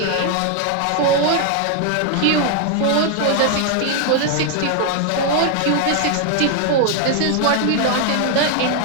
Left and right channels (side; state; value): both; different; correlation 0.00